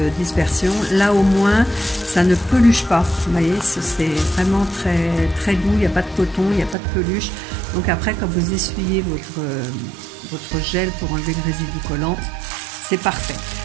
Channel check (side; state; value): left; drops out; at 6.8 s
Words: dispersion. Là au moins ça ne peluche pas, vous voyez, c'est vraiment très doux, il n'y a pas de coton, il n'y a pas de peluche. Donc après quand vous essuyez votre gel pour enlever le résidu collant, c'est parfait.